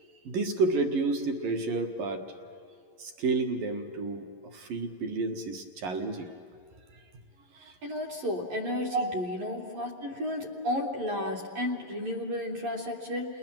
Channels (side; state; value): left; late; 11 ms